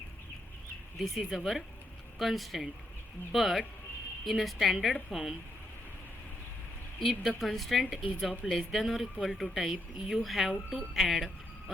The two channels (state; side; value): normal; both; correlation 0.78